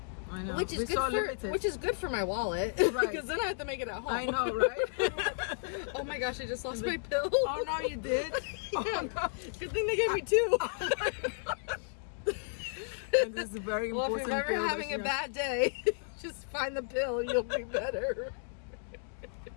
I know. Which is We're good so for limited. which is good for my wallet, Right. Because then I have to make it at home. I know, right? Oh my gosh, I just lost my pill. Oh no, you did. Oh no. Good thing they gave me two. And this is a very Well, important if you're ever pill that having a you have- bad day, just find the pill. You'll be better.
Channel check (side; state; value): right; silent; digital silence